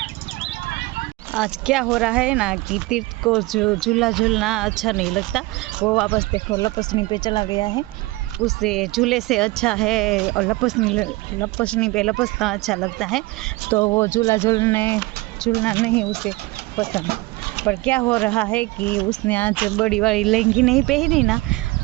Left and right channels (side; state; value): left; quieter; 21.6 dB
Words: आज क्या हो रहा है ना कि तीर्थ को जो झूला झूलना अच्छा नहीं लगता, वो वापस देखो लपसनी पे चला गया है। उसे झूले से अच्छा है और लपसनी पे लपसना अच्छा लगता है, तो वो झूलना नहीं उसे पसंद। पर क्या हो रहा है कि उसने आज बड़ी वाली लहंगी नहीं पहनी ना,